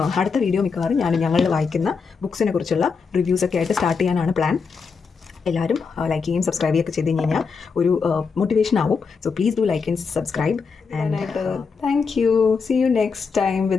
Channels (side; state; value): right; quieter; 5.2 dB